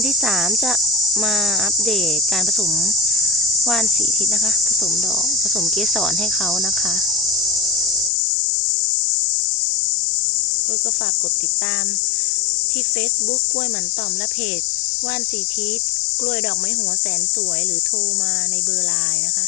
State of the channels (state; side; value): drops out; right; at 8.1 s